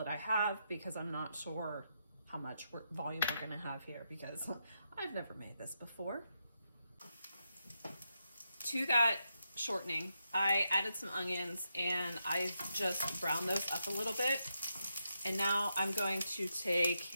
I have because I'm not sure how much volume we're going to have here because I've never made this before. To that shortening, I added some onions and I just browned those up a little bit. And now I'm going to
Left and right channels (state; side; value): inverted; both; correlation -0.83